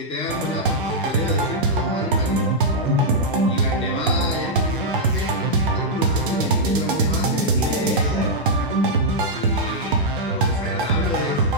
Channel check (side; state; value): both; normal; correlation -0.07